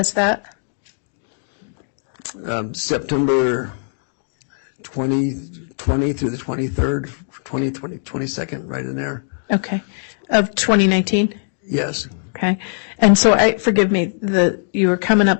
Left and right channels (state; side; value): silent; right; digital silence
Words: that? September 2020 through the 23rd, 22nd, right in there. Okay. Of 2019? Yes, Okay. And so forgive me, you were coming